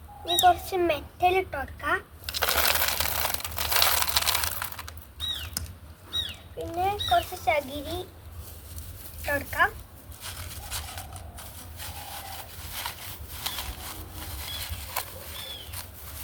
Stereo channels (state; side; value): identical; both; correlation 1.00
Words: ഇനി കുറച്ച് മെറ്റൽ ഇട്ട് കൊടുക്കാം. പിന്നെ കുറച്ച് ചകിരി ഇട്ട് കൊടുക്കാം.